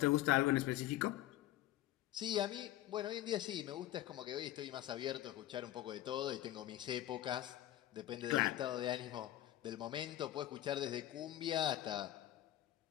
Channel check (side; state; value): right; quieter; 14.2 dB